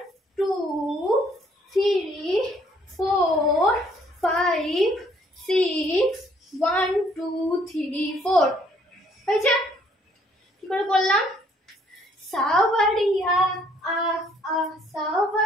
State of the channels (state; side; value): normal; both; correlation 0.63